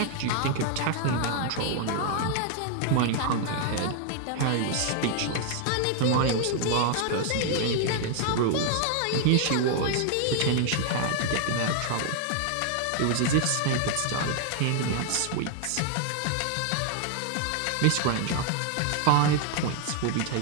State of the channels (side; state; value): both; different; correlation 0.00